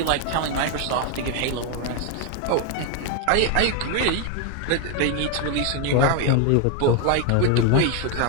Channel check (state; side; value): different; both; correlation 0.01